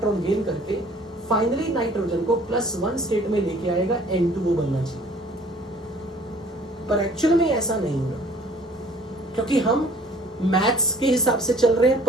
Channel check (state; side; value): normal; both; correlation 0.52